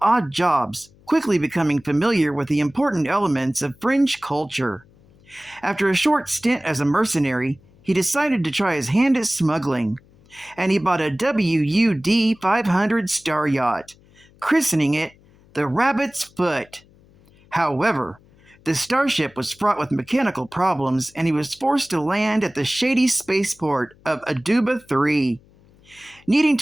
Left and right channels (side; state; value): left; noise; hum, 29 dB below the sound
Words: odd jobs, quickly becoming familiar with the important elements of fringe culture. After a short stint as a mercenary, he decided to try his hand at smuggling, and he bought a WUD-500 star yacht, christening it the Rabbit's Foot. However, The starship was fraught with mechanical problems, and he was forced to land at the shady spaceport of Aduba 3. Needing